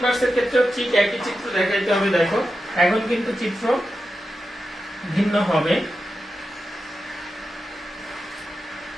এর ক্ষেত্রে ঠিক একই চিত্র দেখাইতে হবে। দেখো এখন কিন্তু চিত্র ভিন্ন হবে।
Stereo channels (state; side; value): normal; both; correlation 0.90